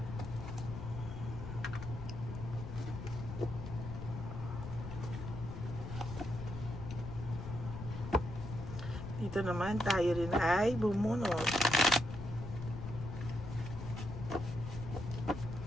Dito naman tayo rin ay bumunot.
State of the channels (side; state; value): left; noise; rumble, 7 dB below the sound